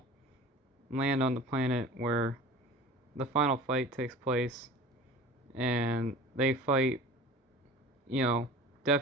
land on the planet where the final fight takes place, and they fight,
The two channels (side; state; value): both; normal; correlation 0.39